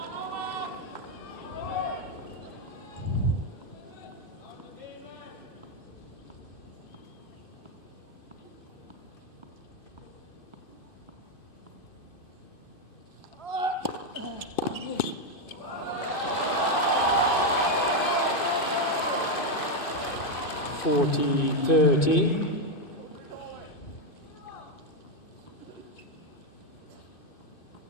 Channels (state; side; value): late; right; 2.5 ms